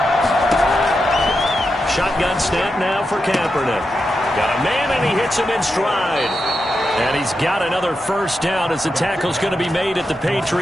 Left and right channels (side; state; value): both; normal; correlation 0.87